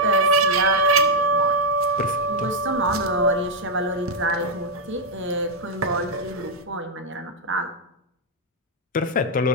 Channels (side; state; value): both; normal; correlation -0.01